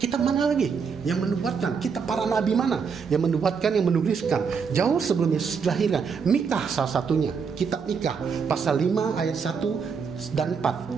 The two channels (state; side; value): quieter; left; 5.9 dB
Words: mana lagi yang menubuatkan? Kitab para nabi mana yang menubuatkan, yang menuliskan jauh sebelum Yesus dilahirkan? Mika salah satunya. Kitab Mika pasal 5 ayat 1 dan